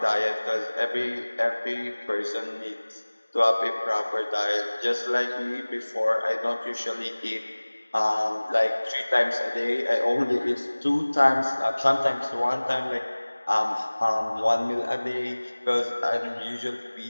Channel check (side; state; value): both; inverted; correlation -1.00